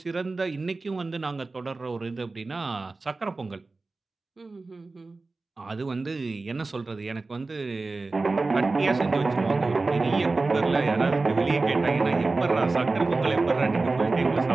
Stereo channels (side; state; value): left; quieter; 3.6 dB